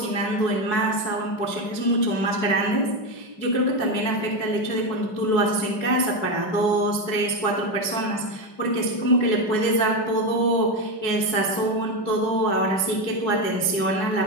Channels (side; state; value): right; late; 5.3 ms